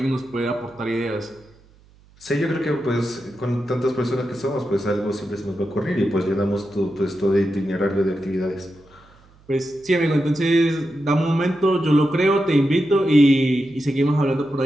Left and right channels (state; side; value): noise; right; hum, 29 dB below the sound